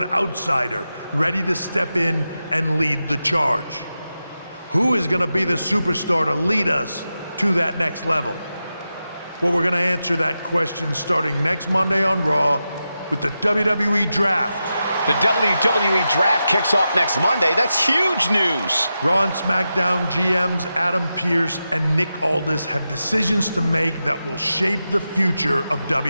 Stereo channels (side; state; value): both; inverted; correlation -0.90